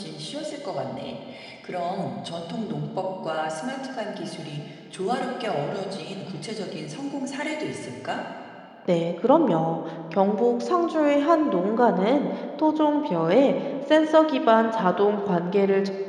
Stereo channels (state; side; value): identical; both; correlation 1.00